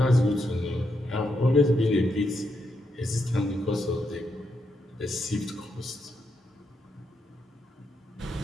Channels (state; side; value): normal; both; correlation 0.81